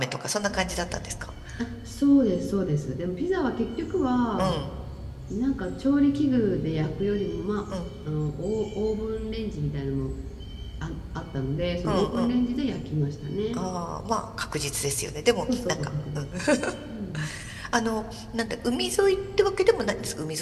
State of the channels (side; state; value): both; identical; correlation 1.00